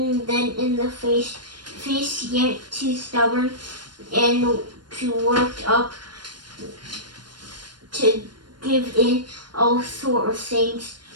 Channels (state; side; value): late; left; 0.71 ms